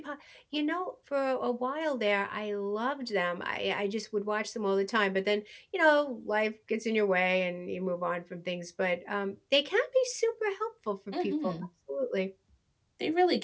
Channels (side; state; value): both; identical; correlation 1.00